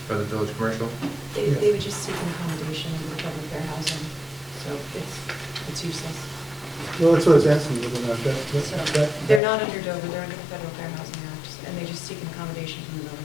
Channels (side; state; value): right; drops out; at 9.4 s